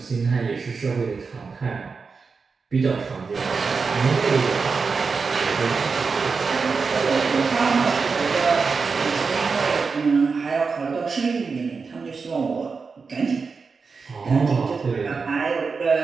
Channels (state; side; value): quieter; left; 4.9 dB